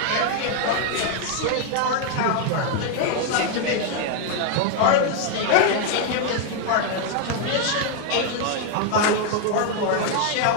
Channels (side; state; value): both; different; correlation 0.00